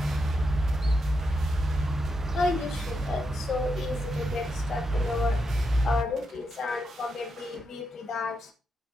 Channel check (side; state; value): both; normal; correlation 0.84